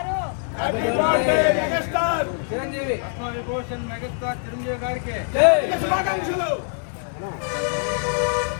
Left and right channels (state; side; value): silent; right; 58 dB below the other